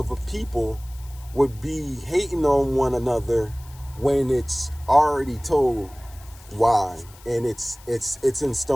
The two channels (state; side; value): noise; left; hiss, 23 dB below the sound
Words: people would be hating on one another when it's already told why, and it's in